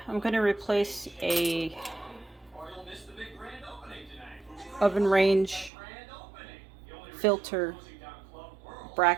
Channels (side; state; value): left; drops out; at 5.7 s